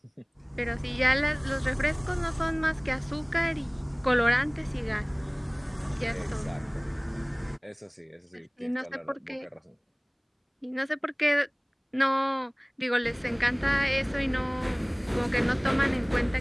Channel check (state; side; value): identical; both; correlation 1.00